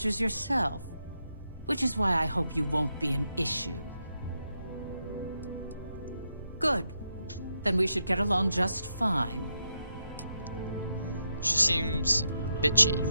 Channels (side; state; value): both; inverted; correlation -0.84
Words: yourself. Which is why I hope you won't be an issue. Good. Then we should get along just fine. She seems bitchy.